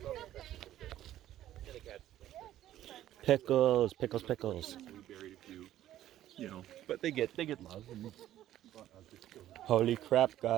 Pickles, pickles, pickles. We buried a few, you know, but they get love. And, Holy crap,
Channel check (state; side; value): quieter; left; 12.8 dB